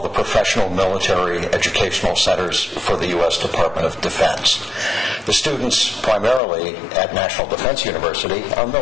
professional military educational centers for the U.S. Department of Defense. The students primarily at National Defense University are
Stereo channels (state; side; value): drops out; right; at 6.4 s